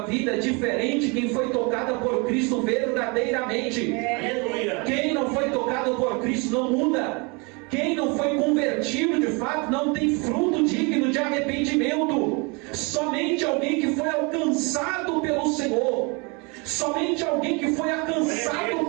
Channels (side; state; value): left; quieter; 30.3 dB